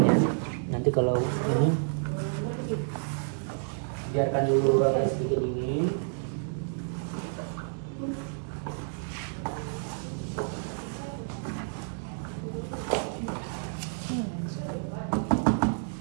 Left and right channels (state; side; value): silent; left; digital silence